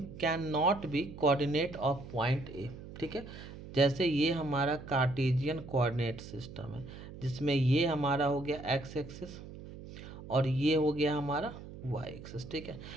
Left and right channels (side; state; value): right; noise; hum, 14 dB below the sound